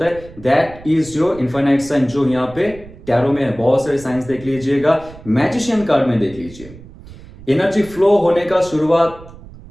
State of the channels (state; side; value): noise; right; rumble, 19 dB below the sound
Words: है। That is your infinite sign, जो यहाँ पे टैरो में है। बहुत सारे साइंस देख लीजिएगा, मैजिशियन कार्ड में देख लीजिए, एनर्जी फ्लो होने का शुरुआत